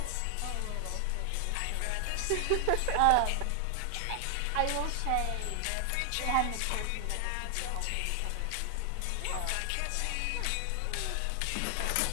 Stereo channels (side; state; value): both; different; correlation 0.00